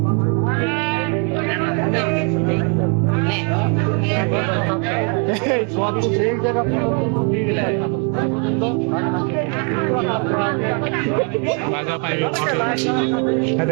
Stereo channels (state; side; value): quieter; left; 37.2 dB